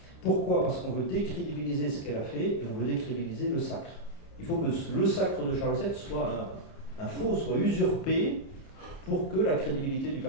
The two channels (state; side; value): late; right; 29 ms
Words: Pourquoi? Parce qu'on veut décrédibiliser ce qu'elle a fait et on veut décrédibiliser le sacre. Il faut que le sacre de Charles VII soit un faux, soit usurpé pour que la crédibilité du